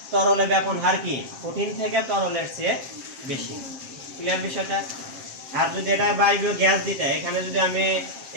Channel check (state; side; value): late; left; 7.5 ms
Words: তরলে ব্যাপন হার কি কঠিন থেকে তরলের চেয়ে বেশি। ক্লিয়ার বিষয়টা? আর যদি এটা বায়বীয় গ্যাস দিতে, এখানে যদি আমি